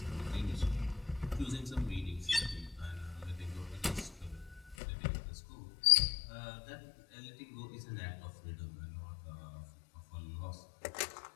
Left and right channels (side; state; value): right; drops out; at 4.8 s